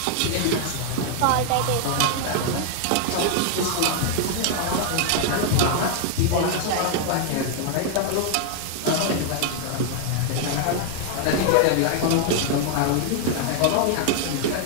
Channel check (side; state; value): both; different; correlation 0.00